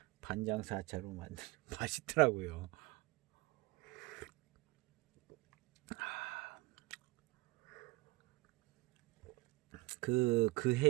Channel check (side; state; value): left; quieter; 22.0 dB